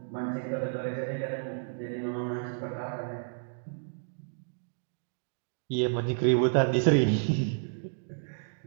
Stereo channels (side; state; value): left; silent; digital silence